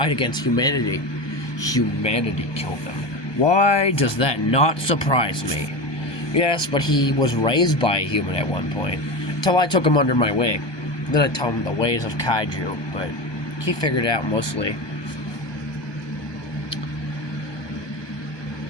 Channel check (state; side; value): late; right; 1.2 ms